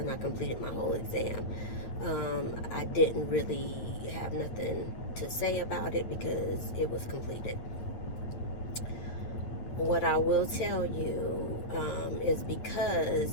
I completed my whole exam. I didn't really have nothing to say about it because it was completed. What I will tell you is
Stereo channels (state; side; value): late; right; 8.7 ms